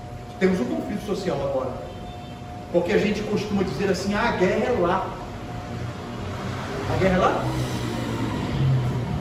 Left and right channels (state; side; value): identical; both; correlation 1.00